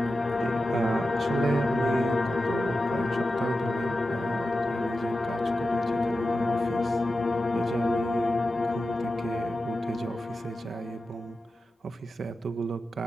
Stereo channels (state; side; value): normal; both; correlation 0.92